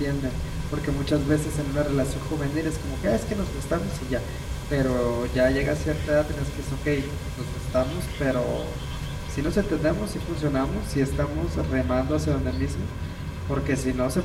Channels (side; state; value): both; identical; correlation 1.00